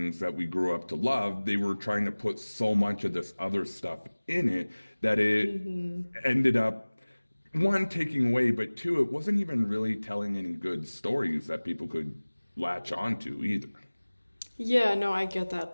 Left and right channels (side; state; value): both; inverted; correlation -1.00